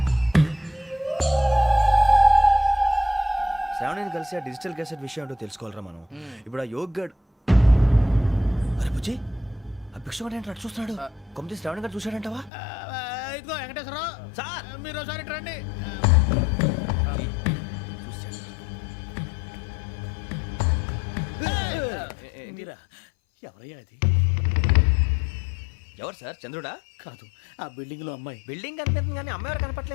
శ్రావణిని కలిసి ఆ డిజిటల్ క్యాసెట్ విషయం ఏంటో తెలుసుకోవాలరా మనం. ఇప్పుడు ఆ యోగ్ గడ్, అరే బుజ్జి, ఆ భిక్షం ఏంటంటే అటు చూస్తున్నాడు. కొమ్మతి శ్రావణి గారు చూశాడంటావా? ఇదిగో వెంకటేశ్వరరావు సార్, మీరు ఒకసారి రండి. మీరా? ఎవరయ్యా అది? ఎవరు సార్? చంద్రుడా? కాదు, ఆ బిల్డింగ్ లో అమ్మాయి. బిల్డింగ్ కనిపిస్తుంది కానీ అమ్మ ఎవరు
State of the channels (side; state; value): right; drops out; at 12.5 s